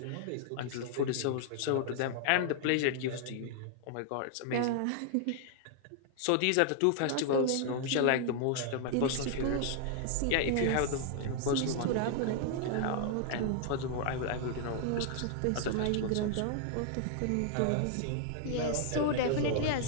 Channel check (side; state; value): both; different; correlation 0.00